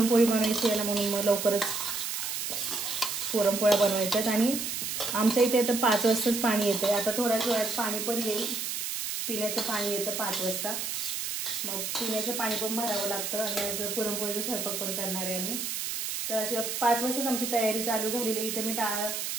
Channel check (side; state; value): right; noise; hiss, 3 dB below the sound